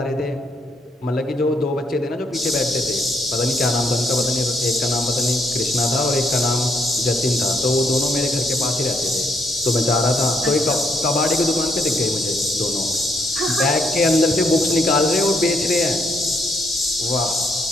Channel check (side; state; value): both; normal; correlation 0.74